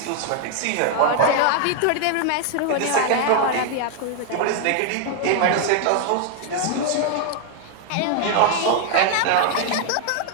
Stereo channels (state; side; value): different; both; correlation 0.00